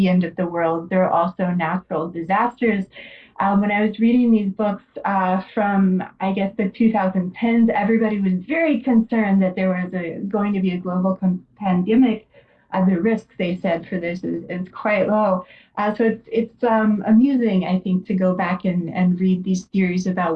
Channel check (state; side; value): identical; both; correlation 1.00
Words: end of the world. There are also natural disasters. When I was reading these books from, I guess, the 2010s, everybody was very concerned that there was going to be a global pandemic. The risk, they said, for this is quite low. So it's amusing, I think, to go back and read these theories about